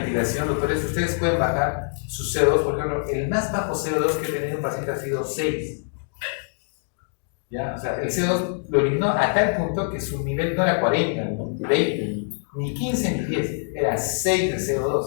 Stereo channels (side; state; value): right; silent; digital silence